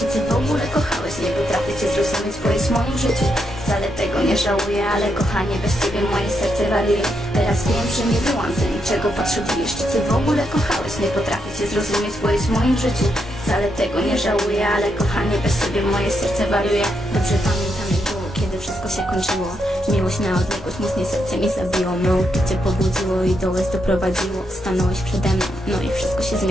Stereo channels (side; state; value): both; normal; correlation 0.81